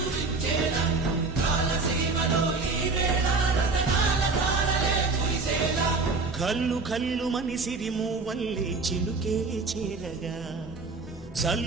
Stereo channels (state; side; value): quieter; left; 3.9 dB